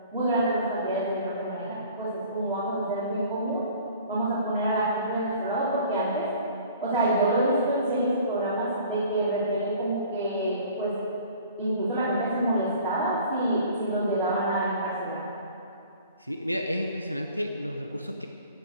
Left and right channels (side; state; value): both; inverted; correlation -0.49